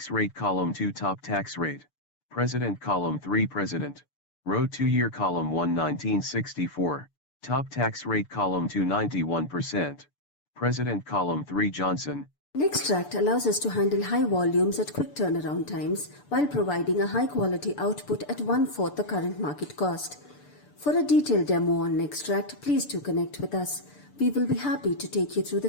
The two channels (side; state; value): right; late; 6.8 ms